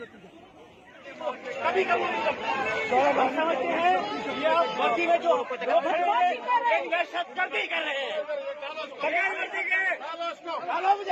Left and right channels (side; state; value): both; identical; correlation 1.00